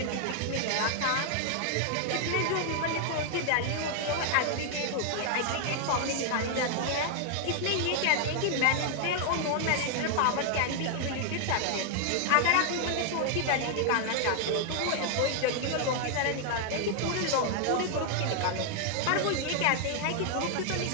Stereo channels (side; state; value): both; different; correlation 0.00